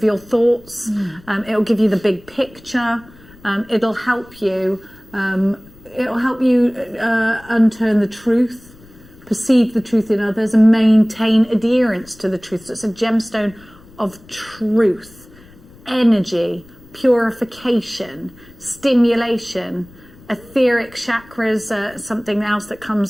your thoughts. It'll give you the big picture. It'll help you. It'll help you unturn the truth, perceive the truth in others, and maintain adherence to the truth. So it's a gemstone of truth, energy, purification, stimulation, etheric chakras, something else that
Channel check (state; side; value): noise; left; rumble, 24 dB below the sound